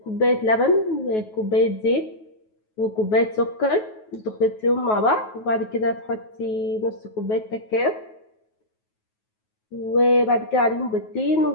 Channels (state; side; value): late; right; 9.3 ms